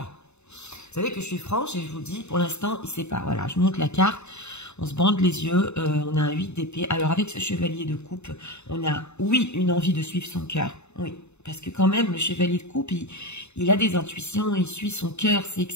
Vous savez que je suis franche et je vous dis, pour l'instant, il ne sait pas. Voilà, je montre la carte. On se bande les yeux. On a un 8 d'épée. Alors avec ce chevalier de coupe, on a, oui, une envie de suivre son cœur. Oui, parce que quand même, le chevalier de coupe, il a des intuitions, il suit son cœur, c'est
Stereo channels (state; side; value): late; right; 0.82 ms